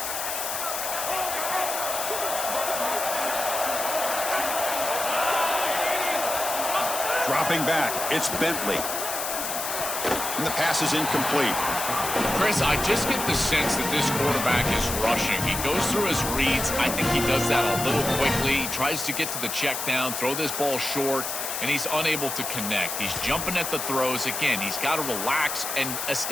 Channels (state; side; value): noise; left; hiss, 3 dB below the sound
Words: Dropping back, it's Bentley. And the pass is incomplete. Chris, I just get the sense that this quarterback is rushing. He goes through his reads. I think he does that a little quickly. He tries to get to the check down, throw this ball short, and he's unable to connect. He's jumping at the throws. Again, he's got to relax and